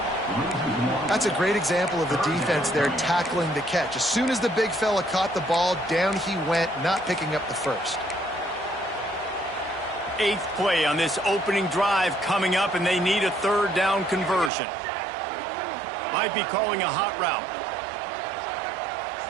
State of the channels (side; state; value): left; drops out; at 14.5 s